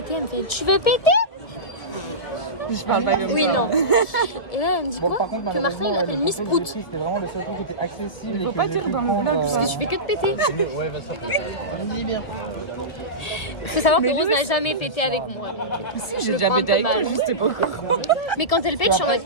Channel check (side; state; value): right; late; 1.9 ms